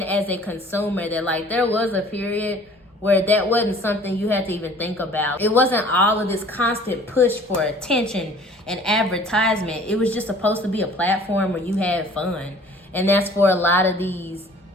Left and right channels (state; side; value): normal; both; correlation 0.50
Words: as a consumer that, there was a period where that wasn't something you had to even think about. It wasn't all of this constant push for attention and advertisement. It was just supposed to be a platform where you had fun. And that's for a lot of these